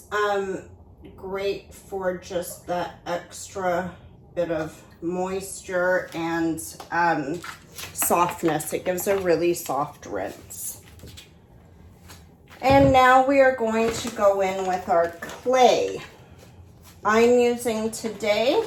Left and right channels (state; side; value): identical; both; correlation 1.00